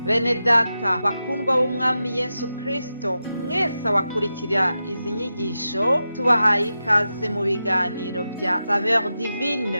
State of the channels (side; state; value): both; inverted; correlation -0.90